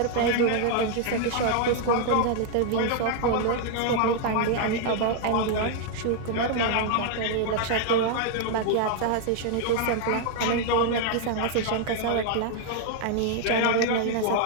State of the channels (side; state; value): both; different; correlation 0.00